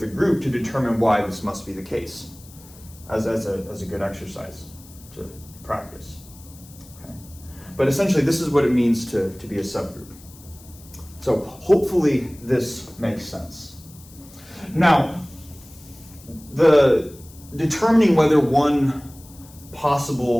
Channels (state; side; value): noise; left; hiss, 22 dB below the sound